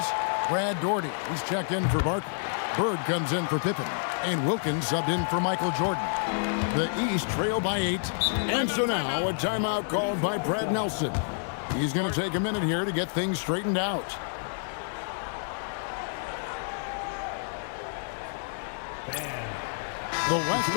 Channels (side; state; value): right; silent; digital silence